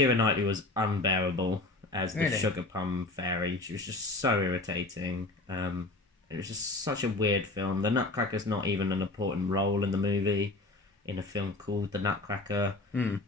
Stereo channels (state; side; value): quieter; right; 3.0 dB